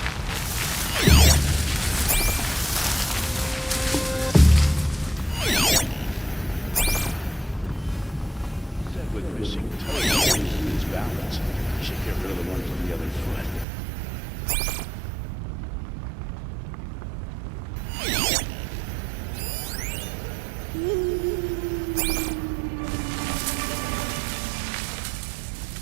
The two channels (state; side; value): drops out; left; at 13.7 s